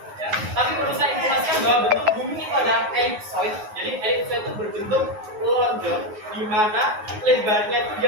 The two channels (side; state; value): left; late; 9.5 ms